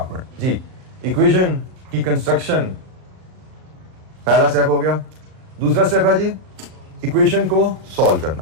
जी, इक्वेशन की कंस्ट्रक्शन पहला स्टेप हो गया। दूसरा स्टेप है जी इक्वेशन को सॉल्व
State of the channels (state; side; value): late; left; 38 ms